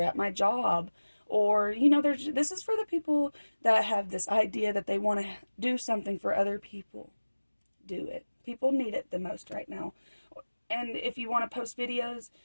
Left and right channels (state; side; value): inverted; both; correlation -1.00